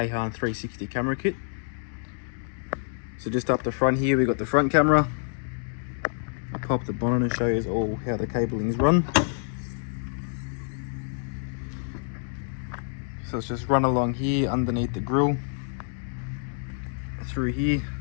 360 camera kit. So just up the front here, we got the front camera. I'll pop the bonnet and show you all how the cabling's run. So it's just run along here underneath the grille, through here.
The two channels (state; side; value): silent; right; digital silence